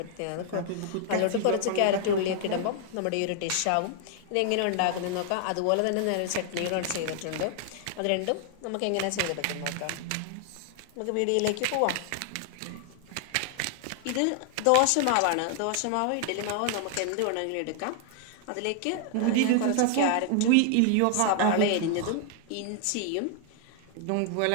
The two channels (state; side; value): different; both; correlation 0.00